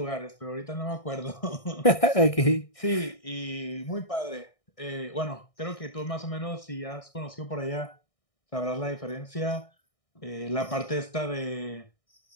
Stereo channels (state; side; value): late; right; 1.6 ms